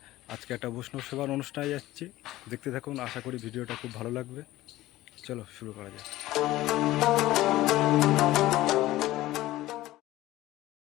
আজকে একটা বৈষ্ণব সেবার অনুষ্ঠানে যাচ্ছি, দেখতে থাকুন। আশা করি ভিডিওটা খুব ভালো লাগবে। চলো শুরু করা যাক।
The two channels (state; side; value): quieter; right; 16.4 dB